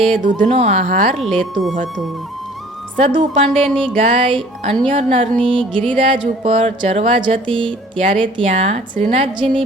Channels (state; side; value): normal; both; correlation 0.51